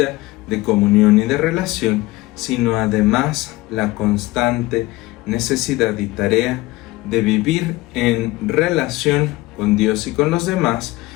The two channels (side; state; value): right; quieter; 19.8 dB